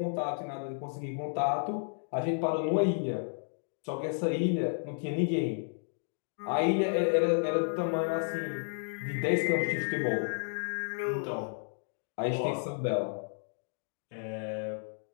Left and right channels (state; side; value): silent; right; digital silence